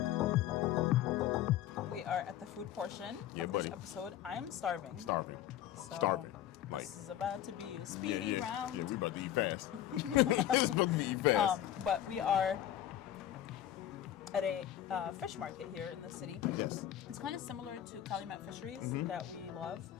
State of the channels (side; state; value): right; quieter; 11.7 dB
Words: We are at the food portion of this episode. I am starving. Starving. This is about to be a speedy round. Yeah, we're about to eat fast. It's about to be eat fast. But we are at a fish market here in the city. Yes. It's kind of similar to Calumet Fisheries that we love,